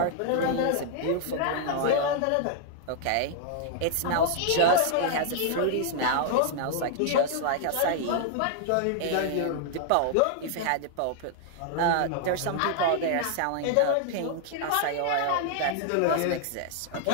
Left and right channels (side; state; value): both; different; correlation -0.01